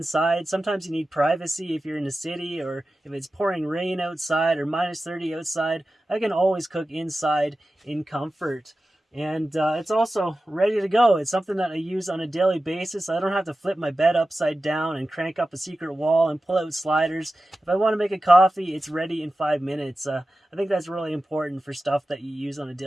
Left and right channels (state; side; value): normal; both; correlation 0.94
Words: Sometimes you need privacy if you're in the city, or if it's pouring rain outside or minus 30 outside. I can always cook inside in comfort. And it's also ready to go. It's something that I use on a daily basis. I don't have to flip my bed upside down and crank up a secret wall and pull out sliders. If I want to make a coffee, it's ready in 5 minutes. I think that's really important for stuff that you use on a